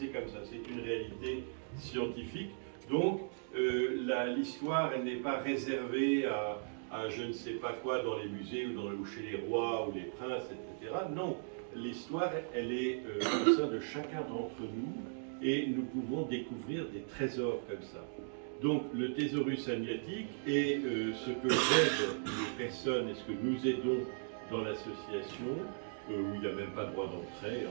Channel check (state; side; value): silent; left; digital silence